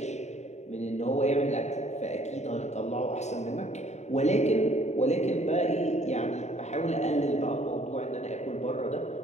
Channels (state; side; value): late; right; 0.33 ms